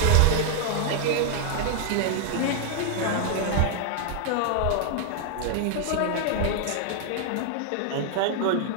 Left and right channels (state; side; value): different; both; correlation 0.00